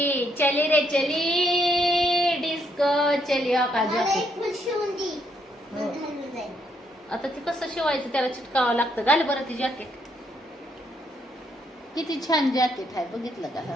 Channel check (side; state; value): both; normal; correlation 0.74